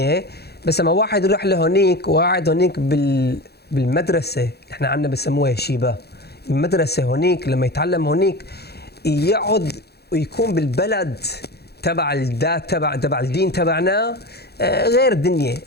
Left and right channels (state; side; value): late; right; 0.47 ms